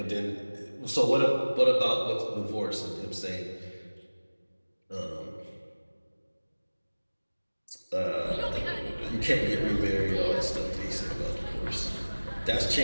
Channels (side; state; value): both; inverted; correlation -1.00